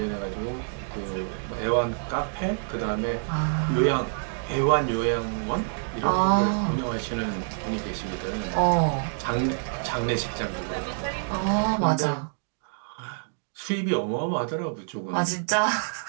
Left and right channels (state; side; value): silent; left; digital silence